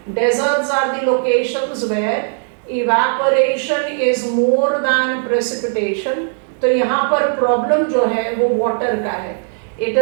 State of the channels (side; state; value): left; silent; digital silence